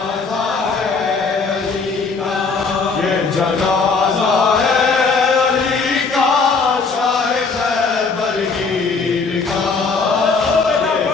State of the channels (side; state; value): right; quieter; 4.5 dB